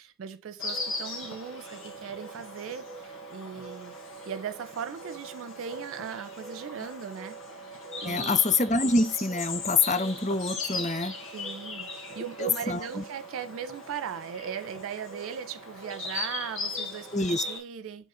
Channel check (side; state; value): both; normal; correlation 0.40